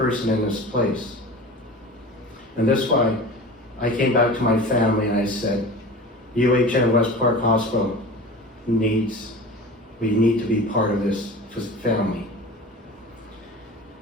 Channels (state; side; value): normal; both; correlation 0.35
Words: in this place. And that's why I came back to my family and I said, UHN WestPark Hospital we need to be part of this family.